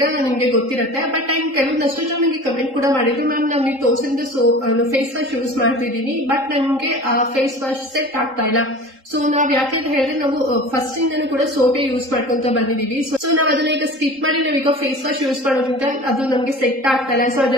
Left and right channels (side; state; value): left; late; 3.8 ms